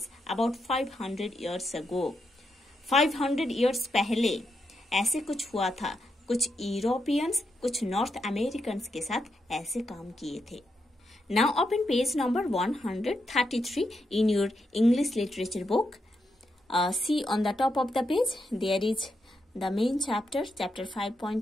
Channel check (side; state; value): both; normal; correlation 0.83